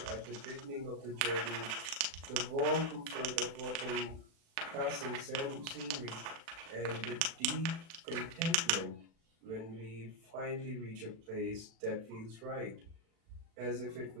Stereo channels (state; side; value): late; left; 36 ms